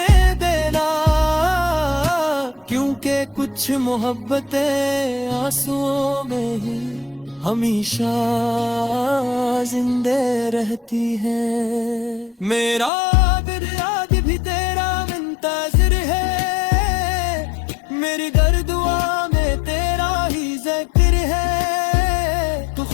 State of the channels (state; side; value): drops out; right; at 12.9 s